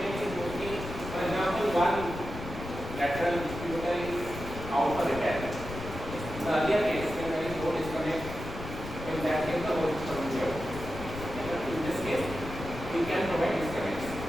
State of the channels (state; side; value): noise; left; rumble, 9 dB below the sound